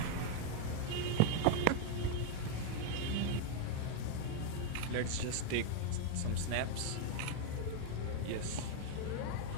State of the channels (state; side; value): different; both; correlation 0.01